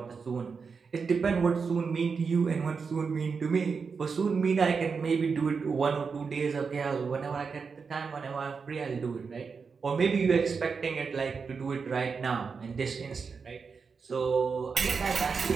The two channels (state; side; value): quieter; left; 5.3 dB